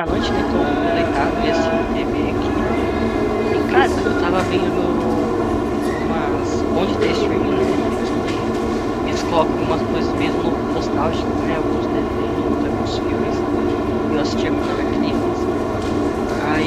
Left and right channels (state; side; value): identical; both; correlation 1.00